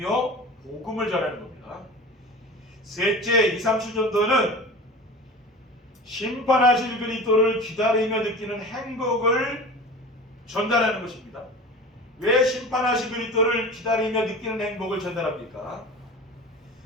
복음을 전하는 겁니다. 셋째, 2, 3, 7전도는 심판하실 그리스도를 기다리며 느끼는 행복을 전달하는 것입니다. 왜 심판하실 그리스도를 기다리며 느끼는 행복을 전달합니까?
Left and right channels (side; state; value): both; normal; correlation 0.36